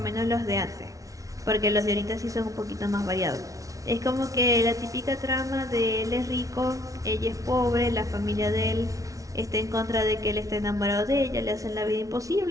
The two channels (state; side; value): late; left; 0.17 ms